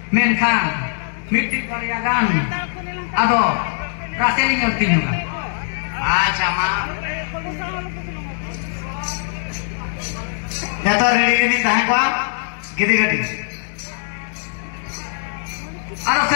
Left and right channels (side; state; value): right; silent; digital silence